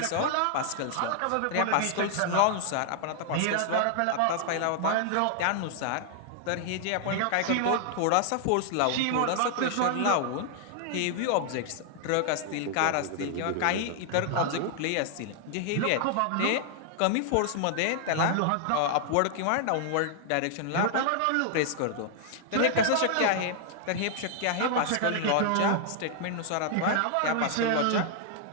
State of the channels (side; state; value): both; different; correlation 0.00